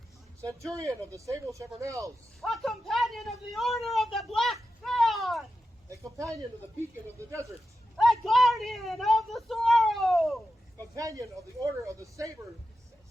Centurion of the Sable Chevronels. A companion of the Order of the Black Fan. A companion of the Beacon of the Desert. A guardian of the Sorrow. Companion of the Order of the Sable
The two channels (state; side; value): normal; both; correlation 0.90